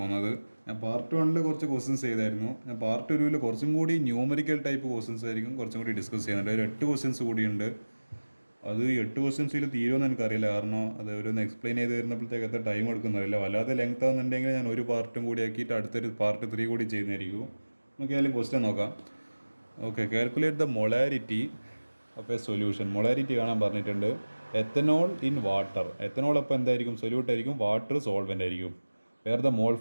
ഞാൻ പാർട്ട് 1 കുറച്ച് ക്വസ്റ്റ്യൻസ് ചെയ്തായിരുന്നു. ഞാൻ പാർട്ട് 2 കുറച്ചും കൂടി ന്യൂമറിക്കൽ ടൈപ്പ് ക്വസ്റ്റ്യൻസ് ആയിരിക്കും കുറച്ചും കൂടി ഡിസ്കസ് ചെയ്യുന്നുണ്ട്. ഒരു 8 ക്വസ്റ്റ്യൻസ് കൂടിയുണ്ട്. അത് 8 ക്വസ്റ്റ്യൻസിൽ തീരുമെന്ന് എനിക്കറിയില്ല, കാരണം അത് ഒരു എക്സ്പ്ലെയിൻ ചെയ്ത് വരുന്നപ്പോഴത്തേക്ക് എത്ര ടൈം എടുക്കുന്നറിയില്ല. വല്ലാതെ ലെങ്ത് ആകുന്നുണ്ടെങ്കിൽ ഞാൻ ഒരു പാർട്ടും കൂടി ആക്കിയിട്ട് അടുത്തൊരു പാർട്ട് 3 കൂടി ചെയ്യുന്നതായിരിക്കും. നമുക്ക് ഏതായാലും ക്വസ്റ്റ്യൻ നോക്കാം. ഓക്കെ, കാൽക്കുലേറ്റ് ദ മൊളാരിറ്റി അപ്പോൾ സൊല്യൂഷൻ. മൊളാരിറ്റി കാണാൻ പറഞ്ഞിട്ടുണ്ട്. Ethanol in water. എത്തനോൾ അപ്പോൾ എന്തായിരിക്കും? സൊല്യൂട്ട് ആയിരിക്കും. വാട്ടർ സോൾവെൻ്റ് ആയിരിക്കും. Where the mole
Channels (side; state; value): both; inverted; correlation -1.00